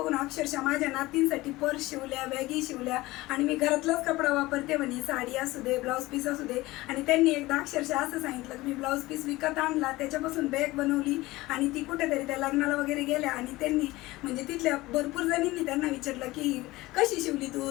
अक्षरशः माझ्या नातींसाठी पर्स शिवल्या, बॅगी शिवल्या आणि मी घरातलाच कपडा वापरते म्हणे, साडी असू दे, ब्लाऊज पीस असू दे. आणि त्यांनी एकदा अक्षरशः असं सांगितलं की मी ब्लाऊज पीस विकत आणला, त्याच्यापासून बॅग बनवली आणि ती कुठेतरी त्या लग्नाला वगैरे गेल्या. आणि त्यांनी म्हणजे तिथल्या भरपूर जणींनी त्यांना विचारलं की कशी शिवली तू,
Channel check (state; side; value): quieter; right; 19.3 dB